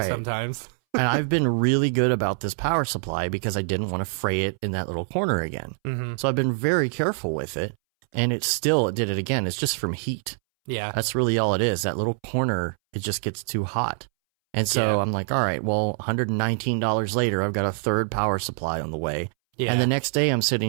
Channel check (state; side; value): silent; left; 62 dB below the other